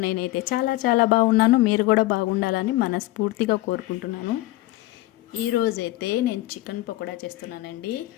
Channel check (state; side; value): quieter; right; 18.0 dB